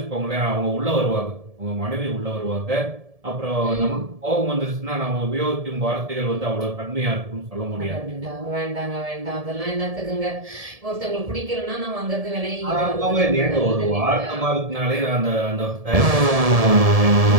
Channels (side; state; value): left; late; 1.7 ms